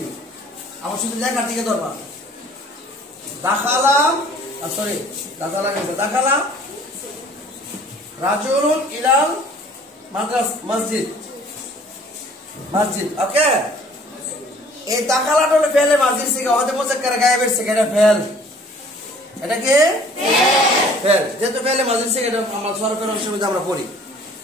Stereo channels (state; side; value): normal; both; correlation 0.53